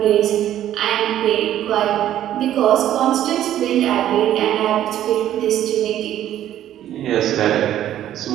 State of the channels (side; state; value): left; quieter; 11.9 dB